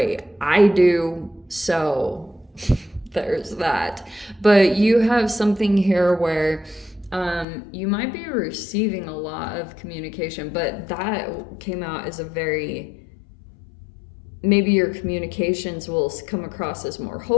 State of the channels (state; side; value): drops out; right; at 7.5 s